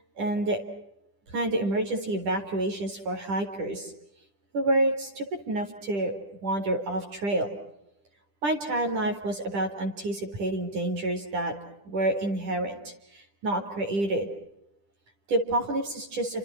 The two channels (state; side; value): late; left; 10 ms